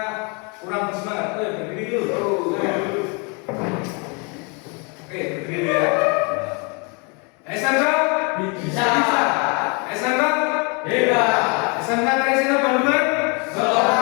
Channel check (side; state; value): right; quieter; 33.2 dB